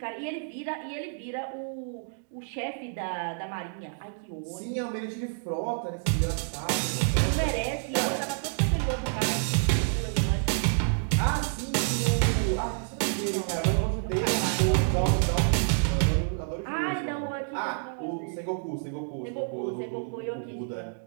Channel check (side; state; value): left; silent; digital silence